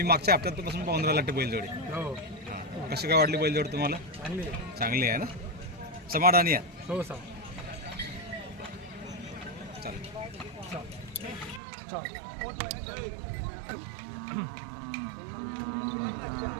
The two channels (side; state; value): left; drops out; at 11.6 s